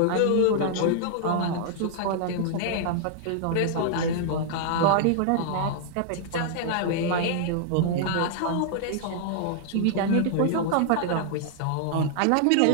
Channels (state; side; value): different; both; correlation -0.01